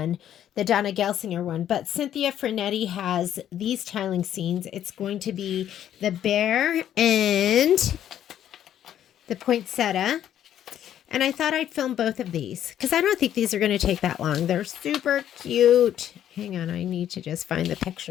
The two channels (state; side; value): quieter; right; 10.7 dB